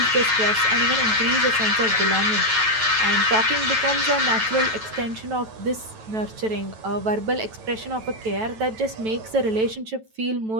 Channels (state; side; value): late; left; 9.2 ms